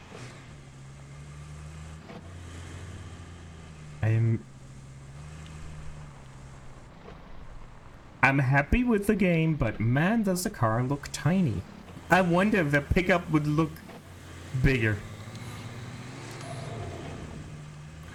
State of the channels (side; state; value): both; identical; correlation 1.00